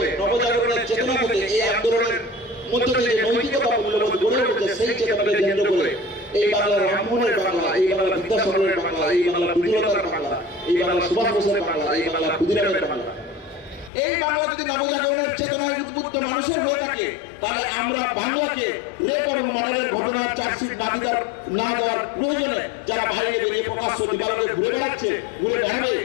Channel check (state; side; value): drops out; right; at 13.9 s